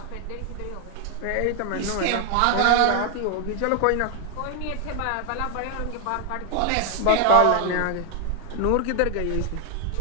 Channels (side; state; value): both; different; correlation 0.00